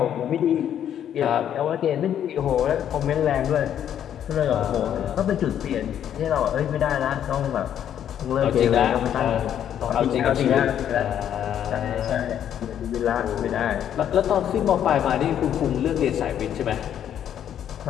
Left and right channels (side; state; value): right; quieter; 9.9 dB